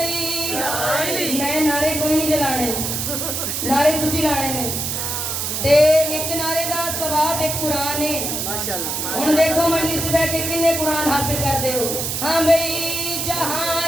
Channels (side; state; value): right; noise; hiss, 2 dB below the sound